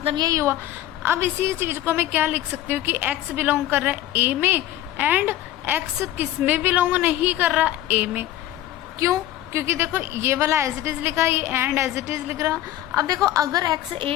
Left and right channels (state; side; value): quieter; right; 13.8 dB